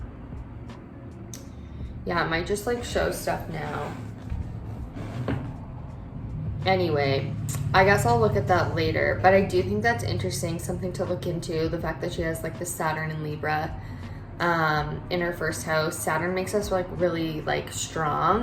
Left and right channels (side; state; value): both; identical; correlation 1.00